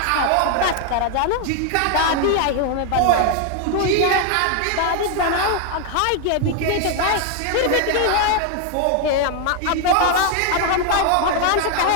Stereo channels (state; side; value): different; both; correlation 0.01